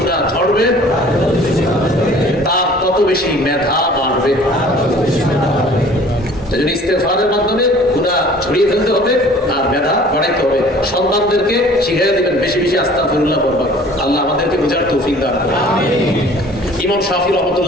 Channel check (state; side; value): normal; both; correlation 0.50